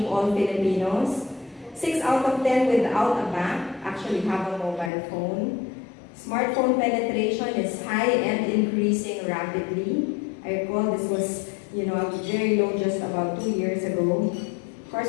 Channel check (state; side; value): drops out; right; at 4.9 s